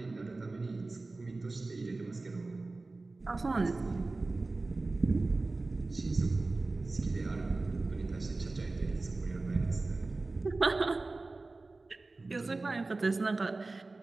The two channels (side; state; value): left; quieter; 3.4 dB